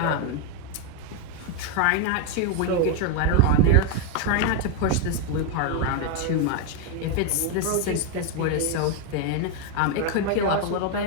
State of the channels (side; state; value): both; different; correlation 0.01